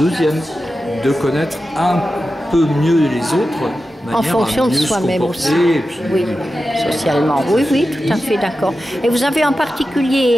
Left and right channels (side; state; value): both; normal; correlation 0.92